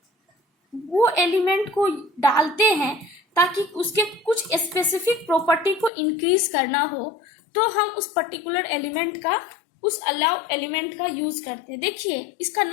वो एलिमेंट को डालते हैं ताकि उसके कुछ स्पेसिफिक प्रॉपर्टी को इंक्रीज करना हो, तो हम उस पर्टिकुलर एलिमेंट का, उस अलाउ एलिमेंट का यूज करते हैं। देखिए, इसका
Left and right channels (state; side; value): drops out; right; at 5.9 s